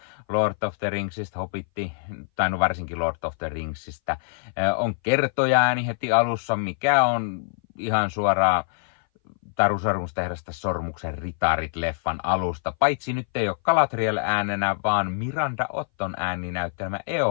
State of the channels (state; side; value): silent; right; 59 dB below the other